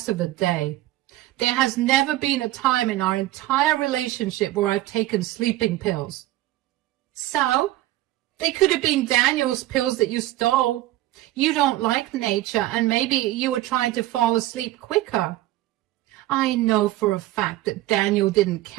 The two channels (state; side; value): quieter; left; 16.1 dB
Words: of the day. There has never been a time in our entire relationship where I've taken sleeping pills. So, they could have been Daniel's pills that you stole. You don't like nature, and maybe you were trying to fall asleep quicker. I know for a fact that Daniel didn't